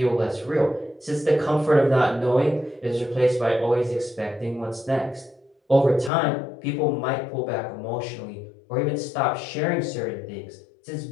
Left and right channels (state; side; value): drops out; right; at 6.1 s